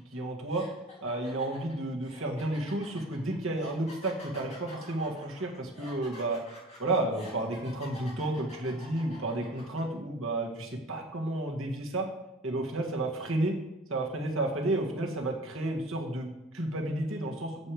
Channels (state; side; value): normal; both; correlation 0.43